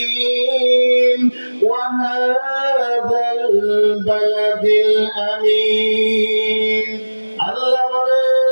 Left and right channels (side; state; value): both; inverted; correlation -1.00